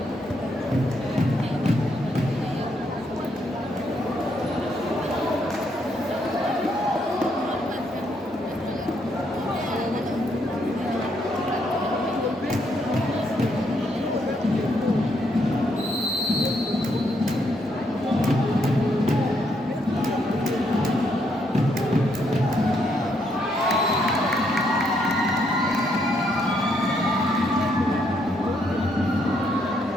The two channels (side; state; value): both; normal; correlation 0.74